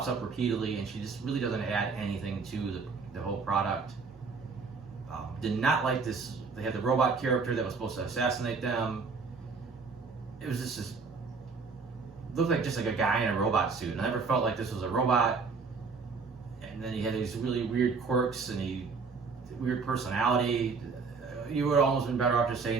up repeatedly, and she just really doesn't add anything to the whole product. Did not like this. They had the robot character that was supposed to assassinate them. It was just looked like just like a guy in a robot suit. And I never felt like this was a robot. and then he had these really weird quirks and weird personality. You would almost been better off just saying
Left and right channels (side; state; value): left; quieter; 4.8 dB